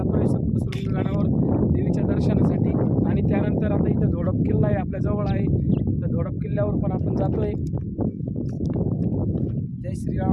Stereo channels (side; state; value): both; identical; correlation 1.00